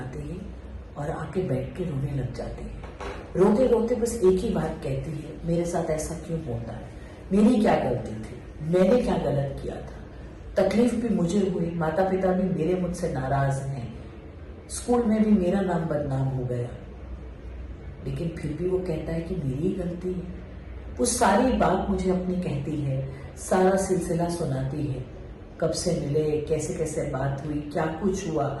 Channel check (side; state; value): both; identical; correlation 1.00